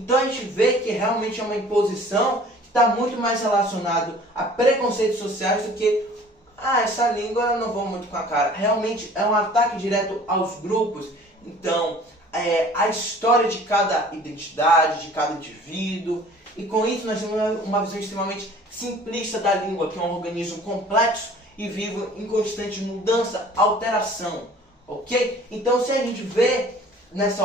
a gente vê que realmente é uma imposição que está muito mais relacionado a preconceitos sociais do que essa língua eu não vou muito com a cara. Realmente é um ataque direto aos grupos. Então, a história de cada identidade, de cada indivíduo. E com isso nós temos uma visão extremamente simplista da língua, que é um organismo complexo e vivo em constante mudança, alteração. Ok? Então se a gente vê nessa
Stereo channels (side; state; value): both; normal; correlation 0.49